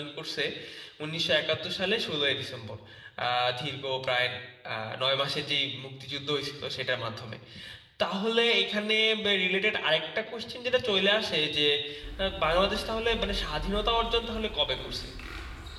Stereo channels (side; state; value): both; identical; correlation 1.00